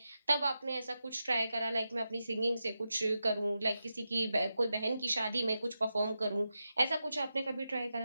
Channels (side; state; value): both; inverted; correlation -0.89